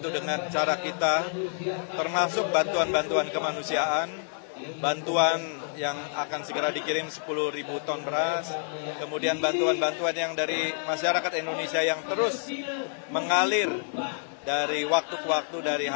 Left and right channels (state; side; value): silent; right; 59 dB below the other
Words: dengan cara kita, termasuk bantuan-bantuan kemanusiaan, bantuan yang akan segera dikirim 10.000 ton beras, kemudian bantuan-bantuan yang dari masyarakat Indonesia yang terus mengalir dari waktu ke waktu, dari